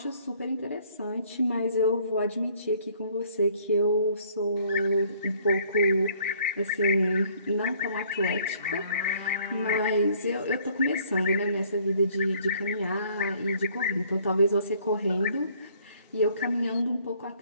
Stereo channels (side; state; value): both; inverted; correlation -0.60